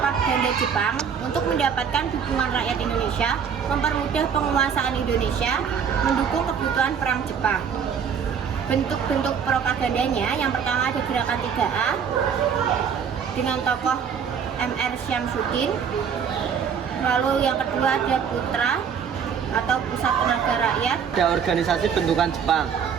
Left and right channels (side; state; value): left; quieter; 7.2 dB